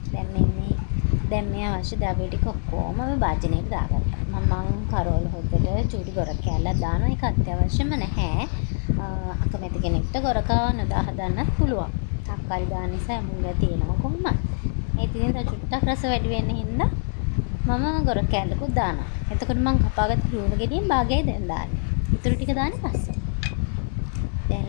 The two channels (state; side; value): silent; right; 62 dB below the other